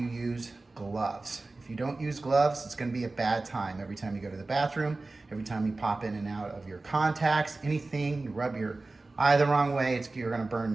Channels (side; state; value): left; quieter; 3.3 dB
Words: use gloves. If you don't use gloves, it's going to be a bad time. Every time you go to the bathroom, every time you pop in and out of your contacts, anything, you rub your eye the wrong way, you're going